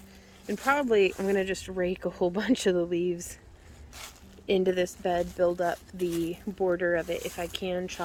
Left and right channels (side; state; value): both; identical; correlation 1.00